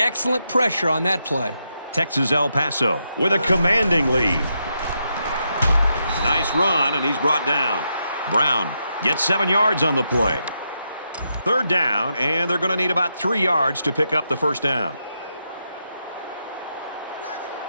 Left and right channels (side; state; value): both; inverted; correlation -0.83